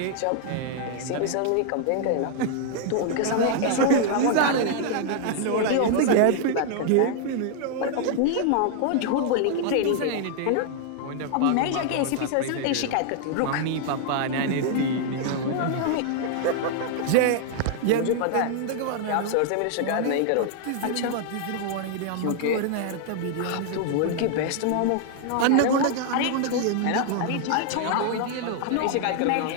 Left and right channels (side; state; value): both; different; correlation 0.00